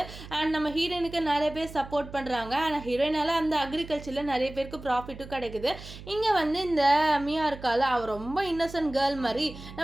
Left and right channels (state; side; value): noise; right; hum, 15 dB below the sound